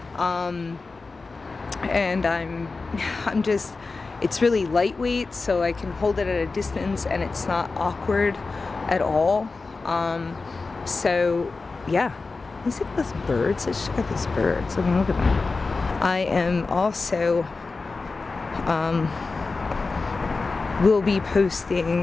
and I'm just, it's really lightweight, so I can hold it at a distance and it's not awkward at all. So yeah, is it those birds? Let's check out those birds. I mean, look at them. I am also will be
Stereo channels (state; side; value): quieter; right; 4.0 dB